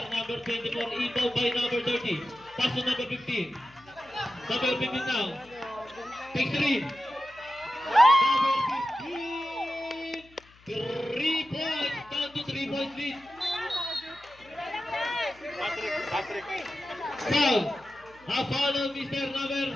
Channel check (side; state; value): left; noise; hum, 27 dB below the sound